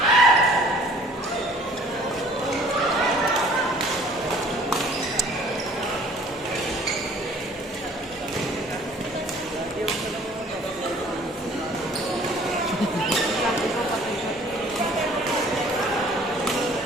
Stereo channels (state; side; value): normal; both; correlation 0.53